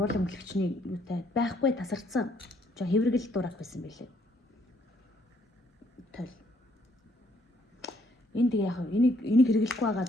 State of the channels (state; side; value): normal; both; correlation 0.68